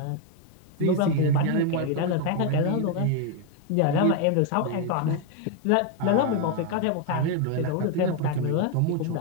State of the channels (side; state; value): both; different; correlation 0.01